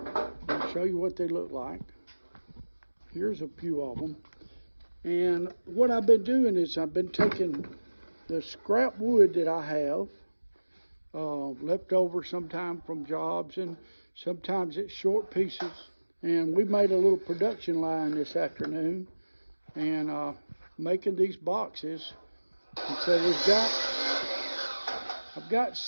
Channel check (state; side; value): inverted; both; correlation -1.00